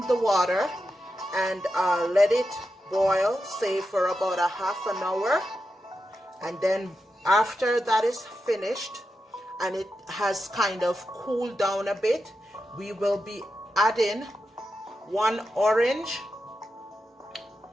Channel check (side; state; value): both; normal; correlation 0.89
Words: the water and let it boil, say for about a half an hour, and then after that is finished and it has kind of cooled down a bit, we will be adding 1 orange